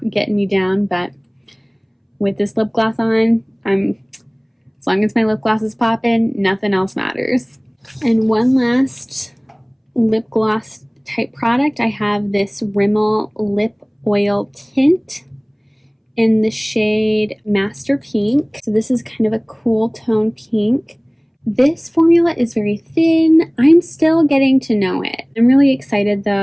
getting me down. But with this lip gloss on, as long as my lip gloss is popping, nothing else matters. And one last lip gloss type product, I have this Rimmel lip oil tint in the shade Master Pink. So this is kind of a cool tone pink. This formula is very thin. I'm still getting to know it. I'm really excited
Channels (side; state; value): both; identical; correlation 1.00